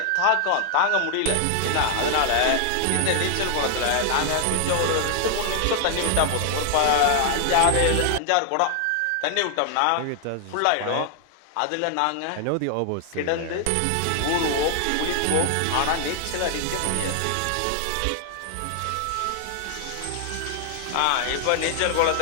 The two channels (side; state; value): both; different; correlation 0.00